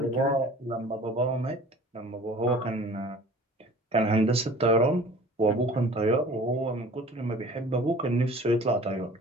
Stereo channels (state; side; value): normal; both; correlation 0.46